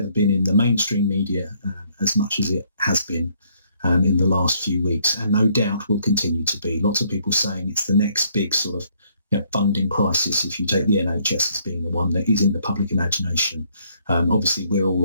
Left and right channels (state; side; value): inverted; both; correlation -0.68